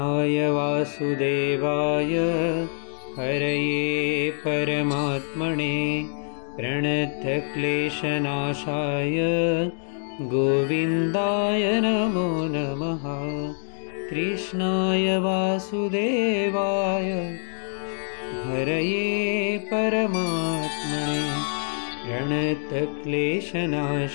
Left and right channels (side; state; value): right; silent; digital silence